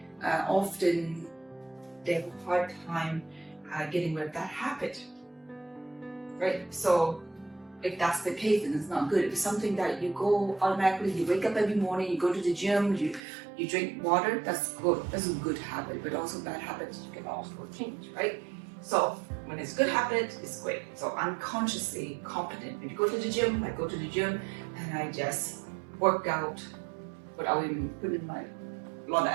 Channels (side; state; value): left; drops out; at 13.2 s